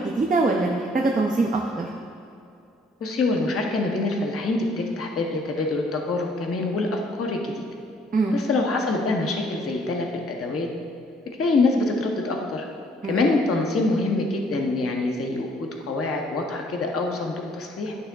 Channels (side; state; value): both; normal; correlation 0.62